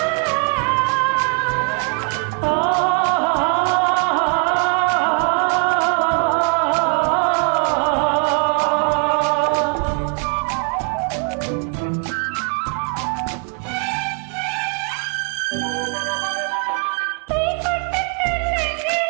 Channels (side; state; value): left; quieter; 38.7 dB